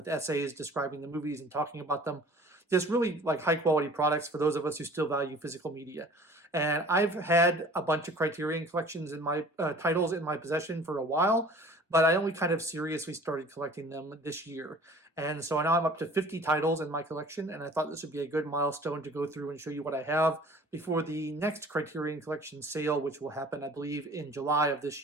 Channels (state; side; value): normal; both; correlation 0.47